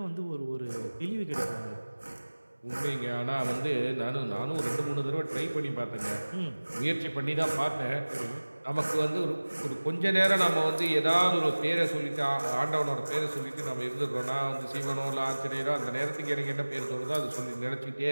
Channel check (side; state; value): both; inverted; correlation -1.00